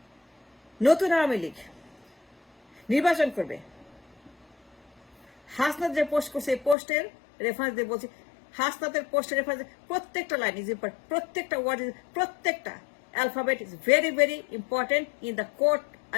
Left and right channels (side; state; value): right; drops out; at 6.8 s